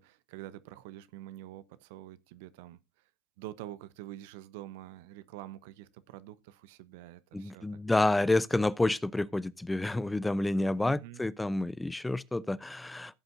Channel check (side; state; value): both; normal; correlation 0.96